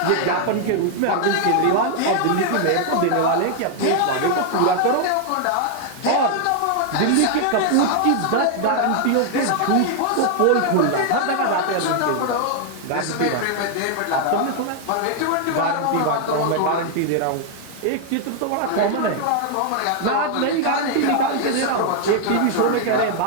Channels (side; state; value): both; different; correlation 0.00